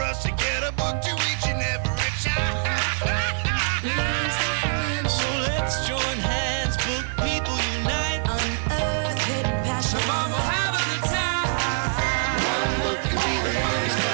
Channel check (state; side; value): silent; left; digital silence